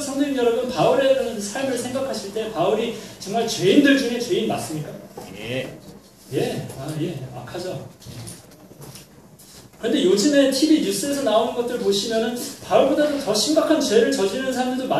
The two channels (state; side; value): identical; both; correlation 1.00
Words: 여러분, 바울의 삶을 생각하실 때 바울이 정말 죄인들 중에 죄인 맞습니까? 예. 악하죠. 그런데 요즘에 TV 뉴스에서 나오는 것들 보시면은 바울보다도 더 심각한 죄를 저지르는 사람들도